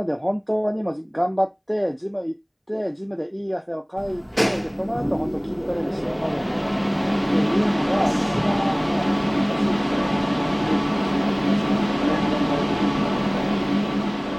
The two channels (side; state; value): both; identical; correlation 1.00